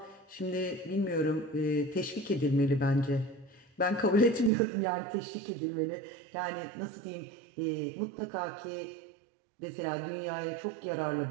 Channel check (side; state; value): left; drops out; at 4.5 s